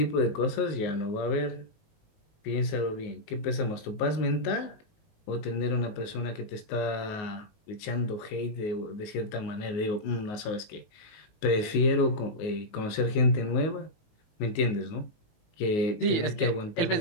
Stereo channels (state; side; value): late; right; 19 ms